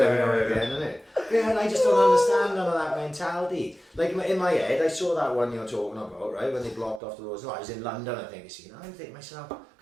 now and again, isn't it? Yeah, and I just don't understand none of that mentality. Like in my head, I saw that one you're talking about, right? When they blocked off the roads. No, I was in London, I think. You know, I think myself,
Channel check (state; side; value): drops out; left; at 7.0 s